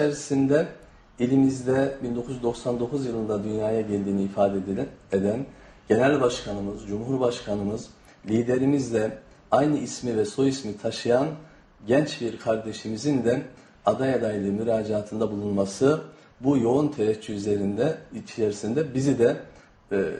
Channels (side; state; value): both; identical; correlation 1.00